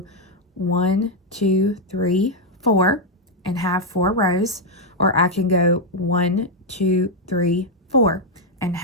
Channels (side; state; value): both; normal; correlation 0.01